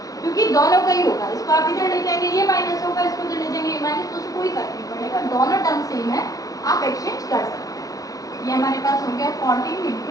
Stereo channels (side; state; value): right; late; 0.17 ms